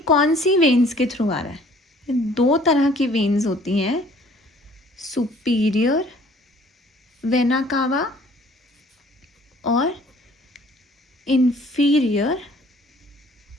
कौन सी वेन्स के थ्रू आ रहा है, ये 2 तरह की वेन्स होती हैं, सुपीरियर वेना कावा और इंफीरियर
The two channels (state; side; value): normal; both; correlation 0.56